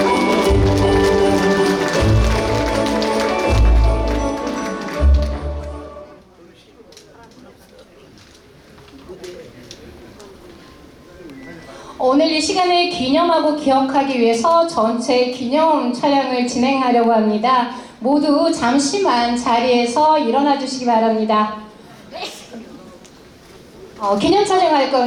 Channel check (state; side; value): identical; both; correlation 1.00